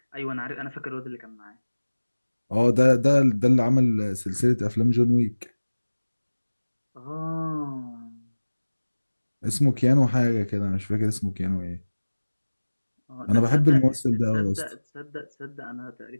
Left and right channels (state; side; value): inverted; both; correlation -1.00